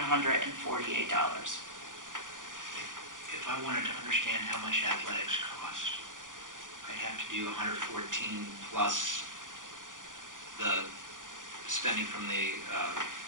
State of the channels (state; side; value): late; left; 0.88 ms